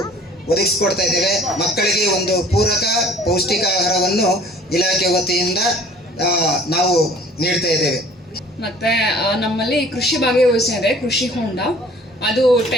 ಒದಗಿಸಿಕೊಡ್ತಾ ಇದ್ದೇವೆ. ಮಕ್ಕಳಿಗೆ ಒಂದು ಪೂರಕ ಪೌಷ್ಟಿಕ ಆಹಾರವನ್ನು ಇಲಾಖೆ ವತಿಯಿಂದ ನಾವು ನೀಡ್ತಾ ಇದ್ದೇವೆ. ಮತ್ತು ನಮ್ಮಲ್ಲಿ ಕೃಷಿ ಭಾಗ್ಯ ಯೋಜನೆ ಇದೆ, ಕೃಷಿ ಹೊಂಡ. ಅದು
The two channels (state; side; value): normal; both; correlation 0.51